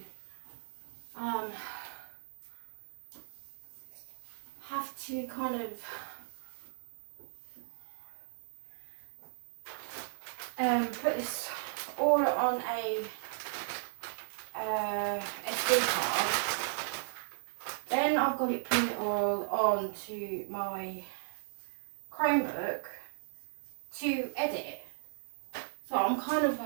have to kind of put this all on a SD card. Then I've got it put it all onto my Chromebook to edit. So I'm kind of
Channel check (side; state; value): left; silent; digital silence